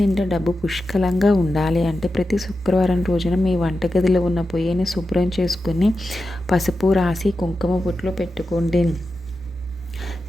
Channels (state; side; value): normal; both; correlation 0.91